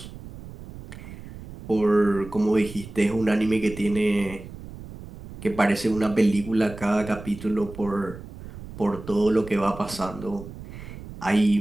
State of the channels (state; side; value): noise; right; rumble, 14 dB below the sound